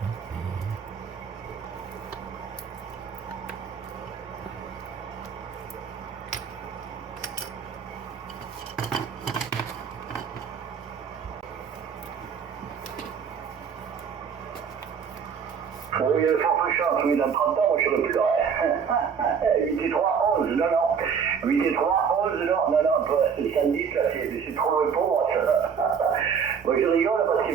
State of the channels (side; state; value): left; quieter; 6.8 dB